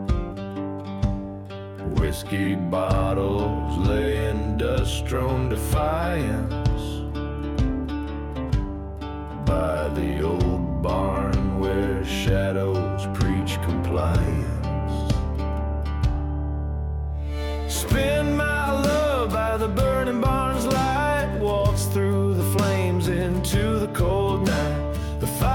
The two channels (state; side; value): identical; both; correlation 1.00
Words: Whiskey bottles lay in dust-strewn defiance by the old barn where shadows preach compliance. Spin my love by the burning barn's light, waltz through the flames into the cold night. The